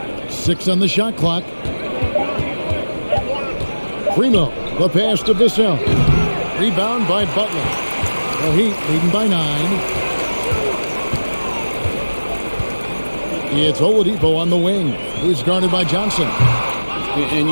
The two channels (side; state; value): both; inverted; correlation -1.00